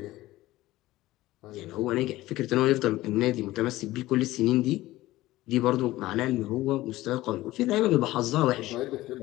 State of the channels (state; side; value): quieter; right; 17.0 dB